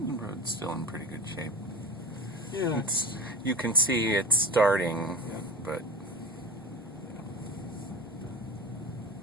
road's still in pretty good shape. Yeah, you can see it's starting, yeah. but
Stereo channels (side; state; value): both; normal; correlation 0.31